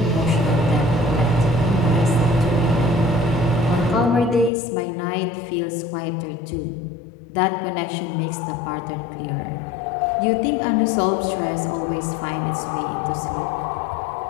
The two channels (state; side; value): drops out; right; at 4.5 s